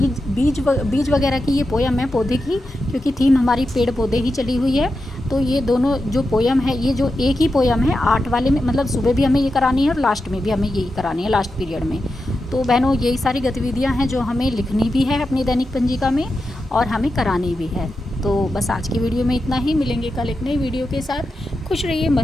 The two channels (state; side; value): normal; both; correlation 0.89